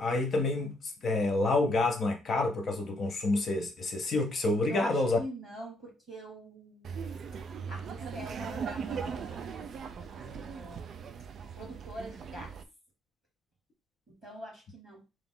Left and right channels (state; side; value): normal; both; correlation 0.71